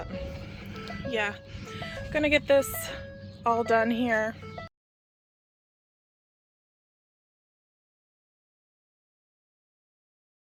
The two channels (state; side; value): identical; both; correlation 1.00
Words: yeah, gonna get this all done here.